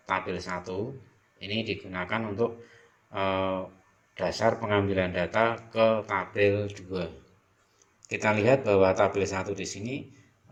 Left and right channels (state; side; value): identical; both; correlation 1.00